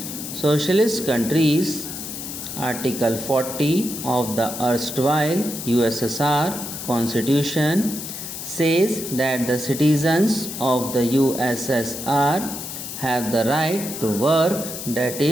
socialist countries. Article 40 of the erstwhile USSR constitution says that the citizens of the USSR have the right to work, that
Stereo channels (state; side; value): noise; left; hiss, 8 dB below the sound